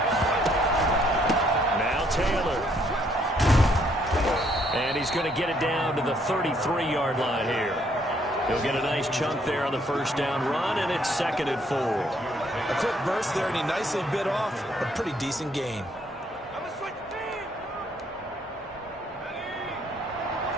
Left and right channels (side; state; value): both; normal; correlation 0.68